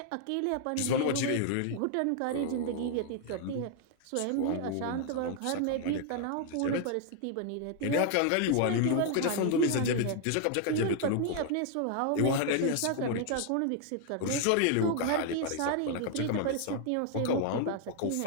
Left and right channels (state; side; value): different; both; correlation 0.00